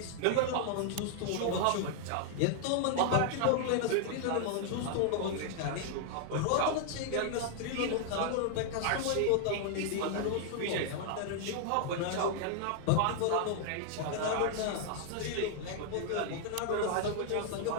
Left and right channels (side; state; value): both; different; correlation -0.01